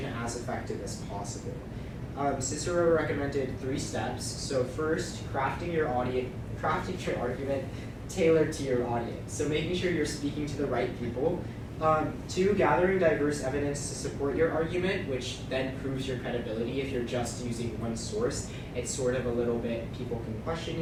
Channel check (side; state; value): both; identical; correlation 1.00